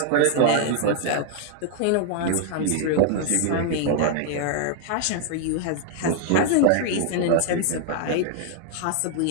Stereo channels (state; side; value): different; both; correlation 0.00